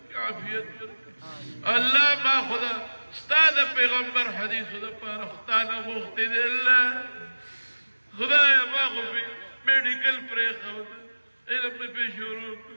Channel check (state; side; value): inverted; both; correlation -1.00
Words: عافیت ورکړي الله ما خدا ستا د پیغمبر حدیثو دپاره ختا نه غوښتې دی الله خدایه ما خو میډیکل پرېښوده علم مې پې شروع